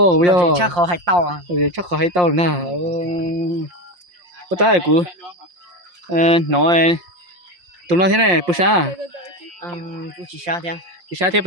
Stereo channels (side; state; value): left; late; 5.7 ms